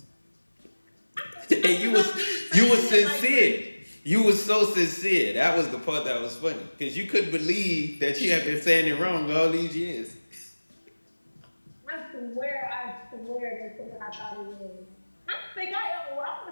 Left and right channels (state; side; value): inverted; both; correlation -1.00